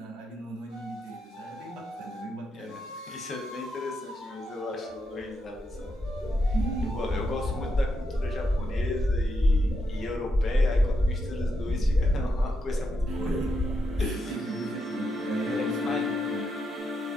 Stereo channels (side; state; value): both; normal; correlation 0.83